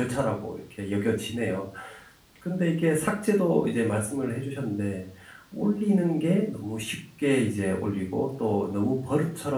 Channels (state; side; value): identical; both; correlation 1.00